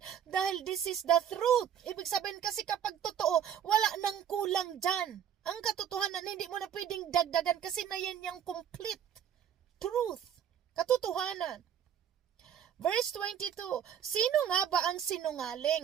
Dahil this is the truth. Ibig sabihin kasi kapag totoo, wala nang kulang dyan. Ang katotohanan, hindi mo na pwedeng dagdagan kasi na yan yung complete truth. Katotohanan. Verse 22, sino nga ba ang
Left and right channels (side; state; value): left; quieter; 9.1 dB